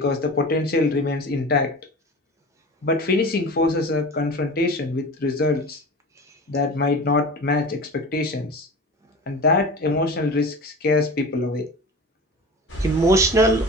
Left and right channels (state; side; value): normal; both; correlation 0.34